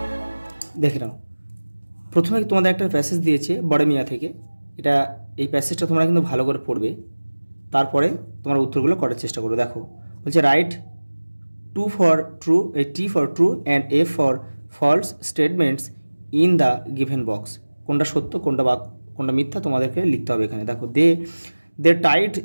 দেখে নাও, প্রথমে তোমাদের একটা প্যাসেজ দিয়েছে বড় মিয়া থেকে। এই প্যাসেজটা তোমরা কিন্তু ভালো করে পড়বে, তারপরে তোমরা উত্তরগুলো করার চেষ্টা করো। দেখো বলছে right T for true and F for false statements in the given box। কোনটা সত্য কোনটা মিথ্যা তোমাদেরকে লিখতে হবে এখানে। দেখো they tied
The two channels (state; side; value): inverted; both; correlation -1.00